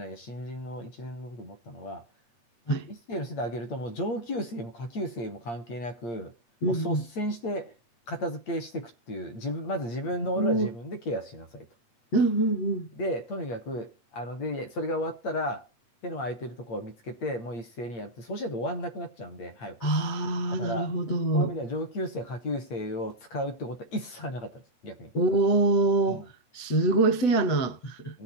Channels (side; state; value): right; late; 8.6 ms